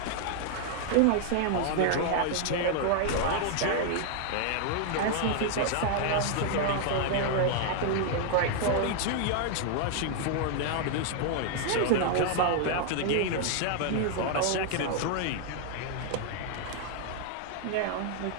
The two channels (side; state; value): both; different; correlation 0.00